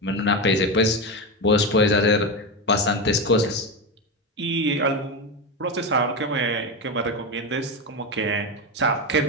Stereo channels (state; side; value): normal; both; correlation 0.15